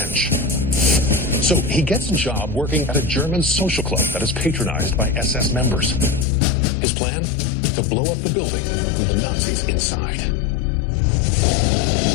So he gets a job working at a German social club that is patronized by SS members. His plan? To blow up the building with the Nazis inside.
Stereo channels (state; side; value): drops out; right; at 6.2 s